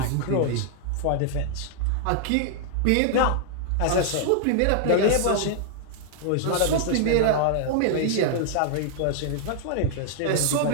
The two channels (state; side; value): different; both; correlation -0.01